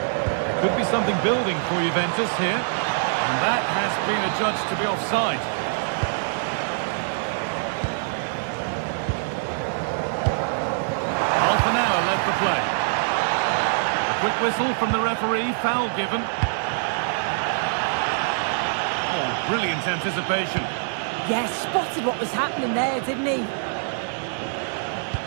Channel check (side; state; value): left; silent; digital silence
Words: There could be something building for Juventus here. And that has been adjudged to be offside. Half an hour left to play. A quick whistle from the referee, foul given. Oh, brilliant anticipation. Yeah, spotted what was happening there, didn't he?